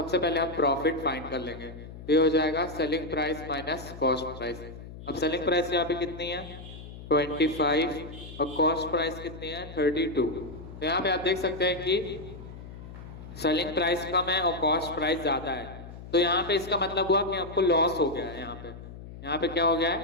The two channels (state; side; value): noise; left; hum, 14 dB below the sound